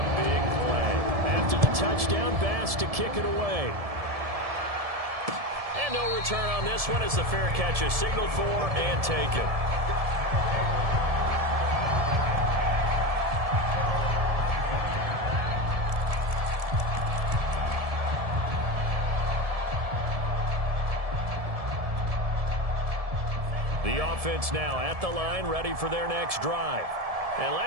big play. After the touchdown, Bass to kick it away. And no return on this one as the fair catch is signaled for and taken. The offense now at the line, ready for their next drive. And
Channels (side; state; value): left; late; 1.7 ms